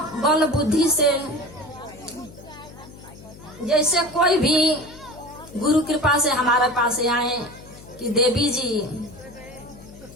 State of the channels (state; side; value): noise; left; hum, 19 dB below the sound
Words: बल बुद्धि से, जैसे कोई भी गुरु कृपा से हमारे पास आए कि देवी जी